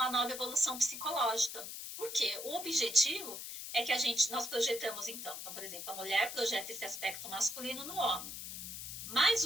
nova evolução psicológica. Porque o objetivo é que nós projetamos então, por exemplo, a mulher projeta esse aspecto masculino no homem. Mas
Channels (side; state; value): left; noise; hiss, 8 dB below the sound